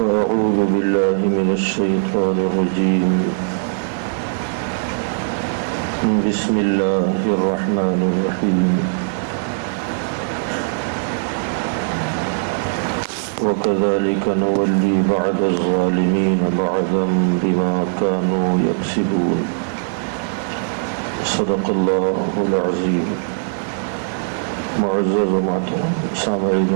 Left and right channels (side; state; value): left; silent; digital silence